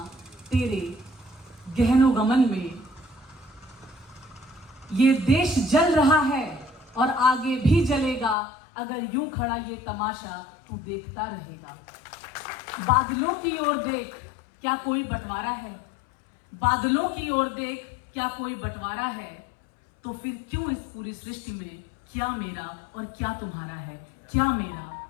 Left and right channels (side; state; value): right; drops out; at 8.3 s